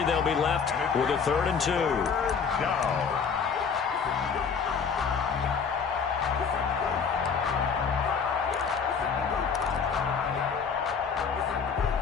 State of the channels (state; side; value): quieter; right; 6.1 dB